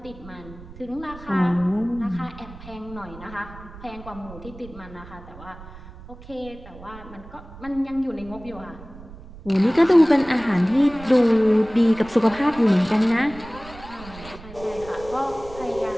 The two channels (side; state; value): right; noise; rumble, 17 dB below the sound